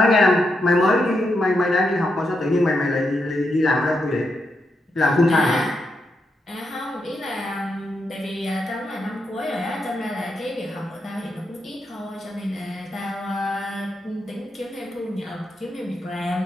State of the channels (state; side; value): normal; both; correlation 0.83